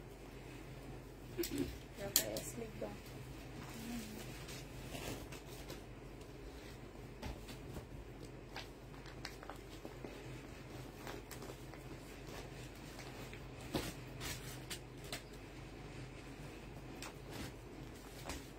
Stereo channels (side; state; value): both; identical; correlation 1.00